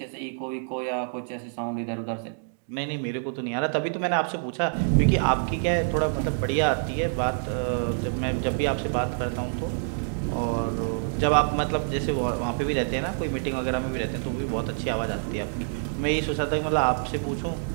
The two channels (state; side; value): silent; left; digital silence